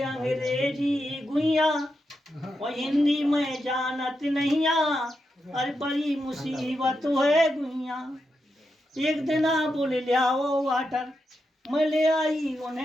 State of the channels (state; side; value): normal; both; correlation 0.86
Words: अंग्रेजी गुइया और हिंदी में जानत नहीं, अरे बड़ी मुसीबत है गुइया। एक दिन बोले ले आओ वाटर, मैं ले आई